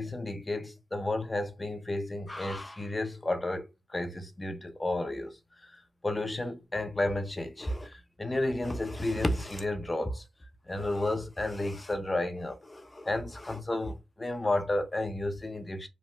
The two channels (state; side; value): normal; both; correlation 0.94